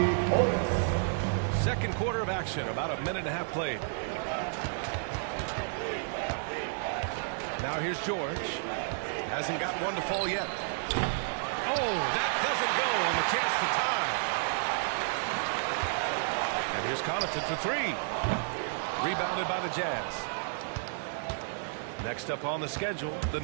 Portis. Second quarter of action, about a minute and a half played. Now here's George. Hasn't gotten one to fall yet. Oh, that doesn't go on the chance to tie. And here's Connaughton for three. Rebounded by the Jazz. Next up on the schedule, the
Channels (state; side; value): silent; left; digital silence